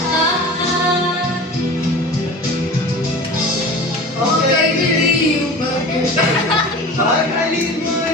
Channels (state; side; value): normal; both; correlation 0.36